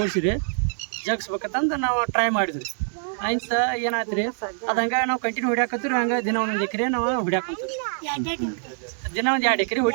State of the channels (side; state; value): left; silent; 62 dB below the other